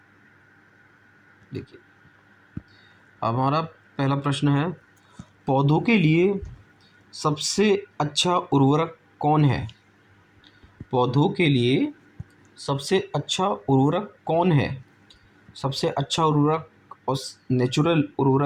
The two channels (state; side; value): identical; both; correlation 1.00